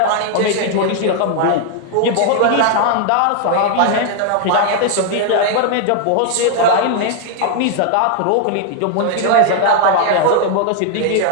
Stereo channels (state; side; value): different; both; correlation 0.00